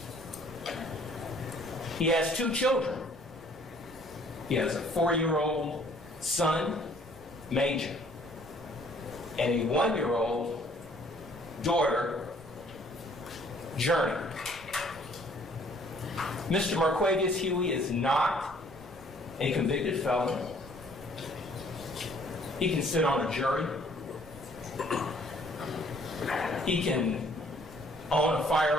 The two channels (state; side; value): noise; right; hum, 25 dB below the sound